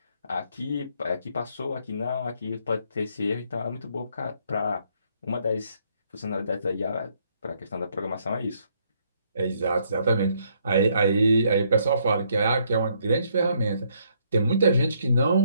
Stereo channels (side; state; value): both; inverted; correlation -0.70